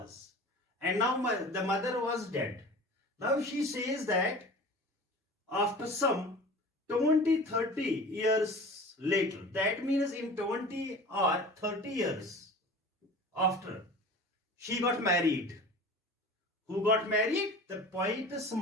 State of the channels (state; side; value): normal; both; correlation 0.39